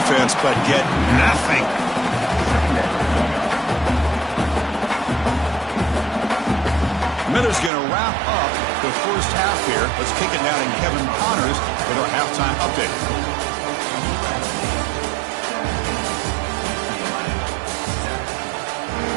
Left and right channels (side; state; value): left; drops out; at 7.7 s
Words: but get nothing. Miller's going to wrap up the first half here. Let's kick it down in Kevin Connors with our halftime update.